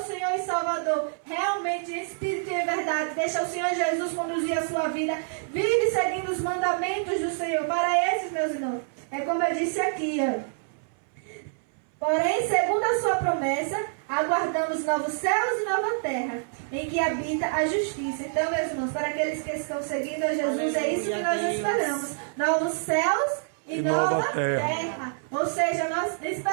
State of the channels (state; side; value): silent; left; 60 dB below the other